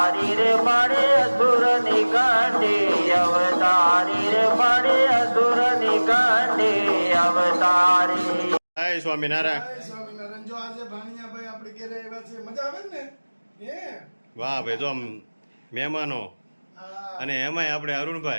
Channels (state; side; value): inverted; both; correlation -1.00